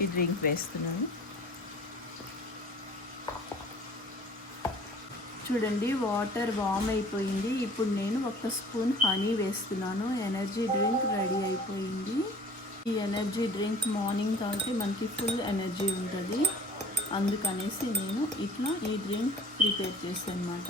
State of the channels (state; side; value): normal; both; correlation 0.47